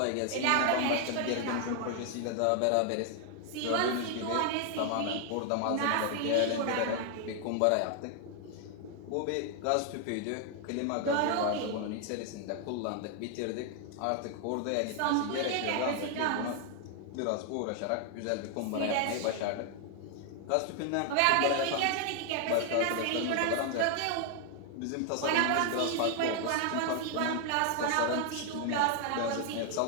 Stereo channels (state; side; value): different; both; correlation 0.00